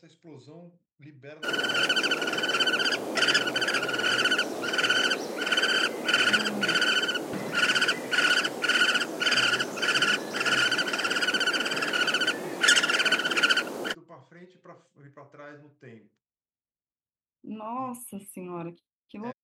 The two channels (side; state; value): both; identical; correlation 1.00